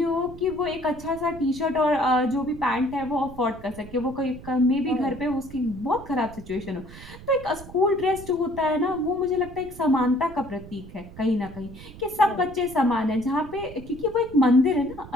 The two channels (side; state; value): right; noise; rumble, 16 dB below the sound